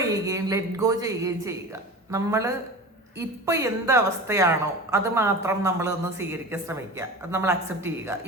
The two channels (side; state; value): both; normal; correlation 0.32